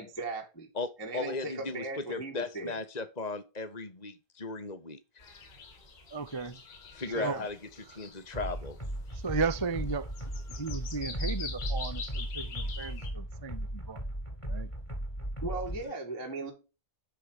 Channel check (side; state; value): right; late; 1.9 ms